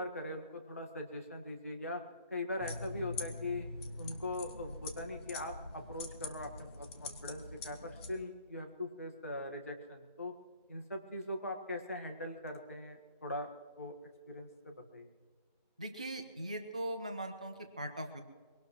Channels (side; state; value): both; inverted; correlation -0.57